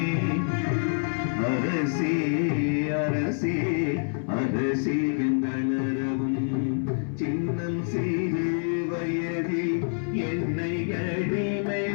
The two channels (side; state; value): right; silent; 60 dB below the other